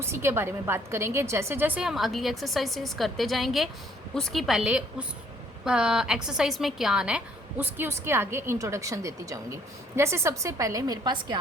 के बारे में बात करेंगे। जैसे जैसे हम अगली एक्सरसाइजेस करते जाएंगे उसकी पहले उस एक्सरसाइज में क्या आना है उसके आगे इंट्रोडक्शन देती जाऊंगी। जैसे सबसे पहले मेरे पास क्या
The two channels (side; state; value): both; normal; correlation 0.62